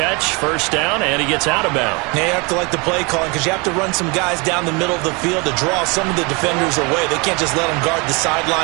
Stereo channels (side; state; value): left; quieter; 29.1 dB